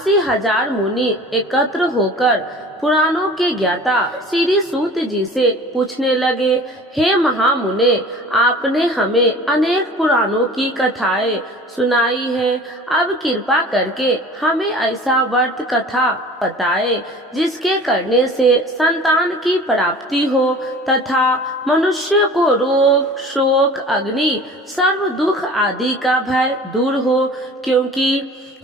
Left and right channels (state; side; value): normal; both; correlation 0.43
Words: मुनि एकत्र होकर पुराणों के ज्ञाता श्री सूत जी से पूछने लगे, हे महामुने, आपने हमें अनेक पुराणों की कथाएं सुनाई है, अब कृपा करके हमें ऐसा व्रत कथा बताए जिसके करने से संतान की प्राप्ति हो तथा मनुष्य को रोग शोक अग्नि सर्व दुख आदि का भय दूर हो, क्योंकि